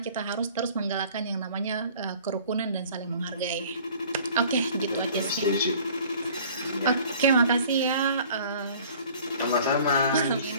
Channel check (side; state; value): both; inverted; correlation -0.50